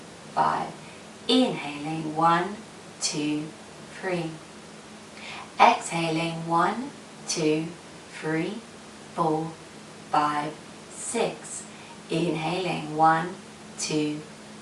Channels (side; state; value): both; identical; correlation 1.00